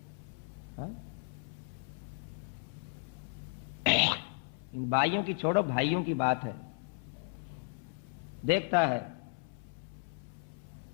हाँ? इन भाइयों की छोड़ो, भाइयों की बात है। देखता है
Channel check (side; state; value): right; silent; 54 dB below the other